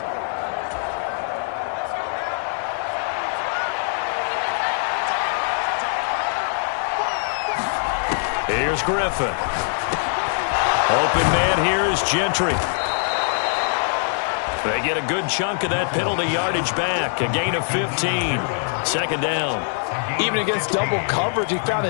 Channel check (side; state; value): right; silent; digital silence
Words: Here's Griffin. Open man here is Gentry. They get a good chunk of that penalty yardage back. A gain of 15. 2nd down. Even against double coverage, he found